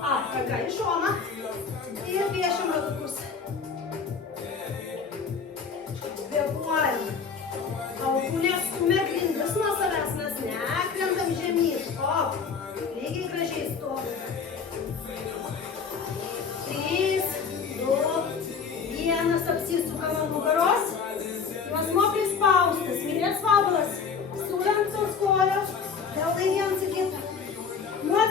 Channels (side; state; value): right; quieter; 5.8 dB